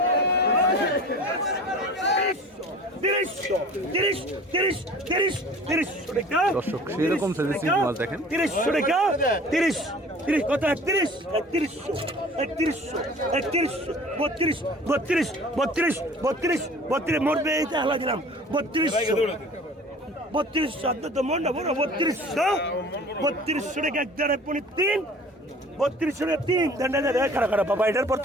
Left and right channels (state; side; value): normal; both; correlation 0.45